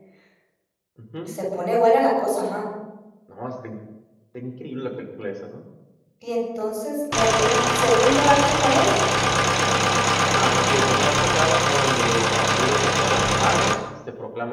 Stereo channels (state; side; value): identical; both; correlation 1.00